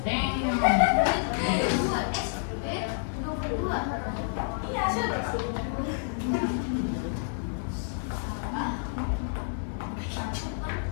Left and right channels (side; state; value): right; silent; digital silence